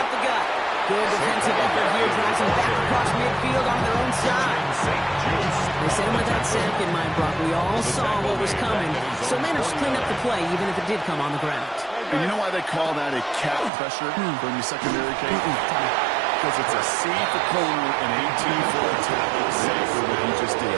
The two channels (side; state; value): left; drops out; at 13.7 s